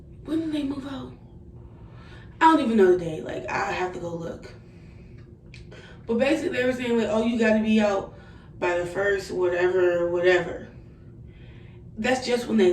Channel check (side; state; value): both; identical; correlation 1.00